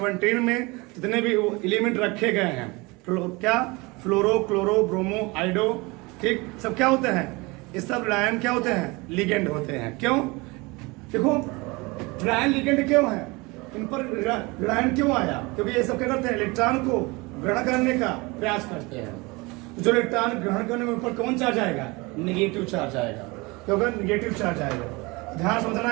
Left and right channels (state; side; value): quieter; left; 25.0 dB